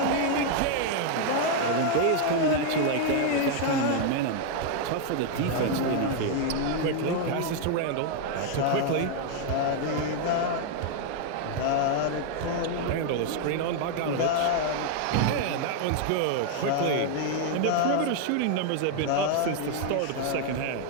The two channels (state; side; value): different; both; correlation 0.00